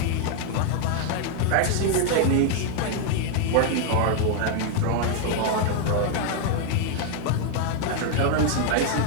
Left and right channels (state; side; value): different; both; correlation 0.00